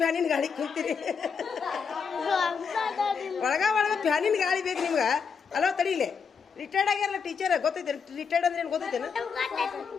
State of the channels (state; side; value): quieter; right; 6.0 dB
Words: ಗಾಳಿ ಕುಂತೀರಿ ಒಳಗ ಫ್ಯಾನಿನ ಗಾಳಿ ಬೇಕು ನಿಮ್ಗೆ ಅಲೋ ತಡೀಲಿ ರಿಟೈರ್ಡ್ ಆಗ್ಯಾರಲ್ಲ ಟೀಚರ್ ಗೊತ್ತೈತೆ ರಿಟೈರ್ಡ್ ಅಂದ್ರೆ ಏನು ಗೊತ್ತೈತೇನು